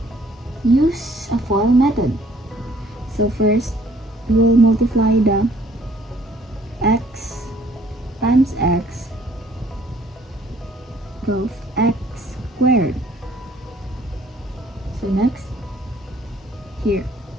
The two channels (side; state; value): both; normal; correlation 0.60